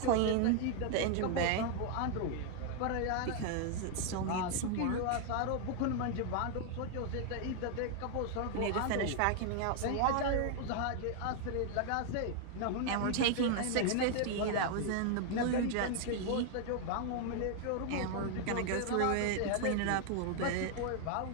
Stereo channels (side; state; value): both; different; correlation 0.00